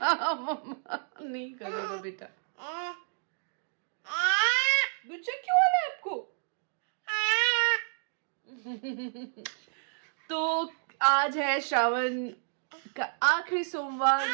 मम्मा नहीं करेगा बेटा। गुस्सा क्यों आ रहा है आपको? तो आज है श्रावण का आखिरी सोमवार,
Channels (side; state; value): left; silent; digital silence